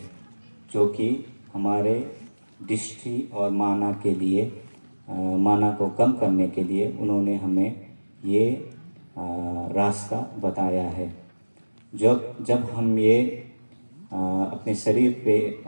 जो कि हमारे दृष्टि और माना को कम करने के लिए उन्होंने हमें ये रास्ता बताया है। जब हम ये अपने शरीर पे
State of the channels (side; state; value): both; inverted; correlation -1.00